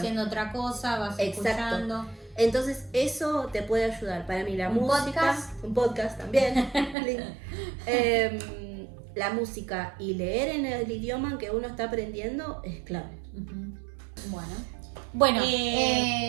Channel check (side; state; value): left; drops out; at 7.0 s